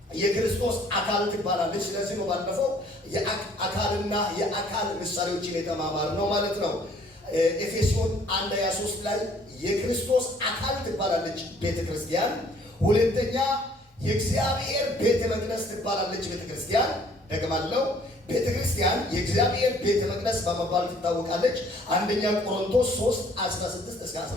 የክርስቶስ አካል ትባላለች። ስለዚህ ነው ባለፈው የአካልና የአካል ምሳሌዎችን የተማማር ነው ማለት ነው። ኤፌሶን 1:23 ላይ የክርስቶስ አካል ትባላለች ቤተክርስቲያን። ሁለተኛ የእግዚአብሔር ቤተ መቅደስ ትባላለች ቤተክርስቲያን። ደግማለሁ፣ ቤተክርስቲያን የእግዚአብሔር ቤተ መቅደስ በመባል ትታወቃለች። አንደኛ ቆሮንቶስ 3:16 እስከ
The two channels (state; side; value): normal; both; correlation 0.59